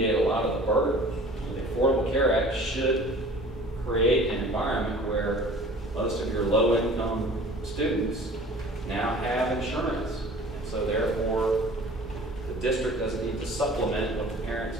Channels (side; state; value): both; normal; correlation 0.46